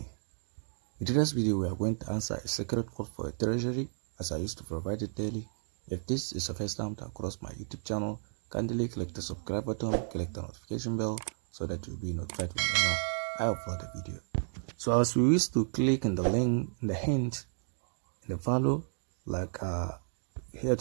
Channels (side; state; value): left; silent; digital silence